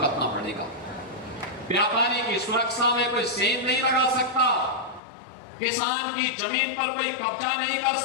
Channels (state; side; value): drops out; right; at 5.0 s